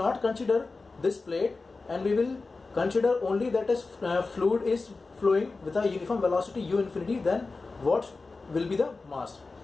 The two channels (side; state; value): right; quieter; 3.8 dB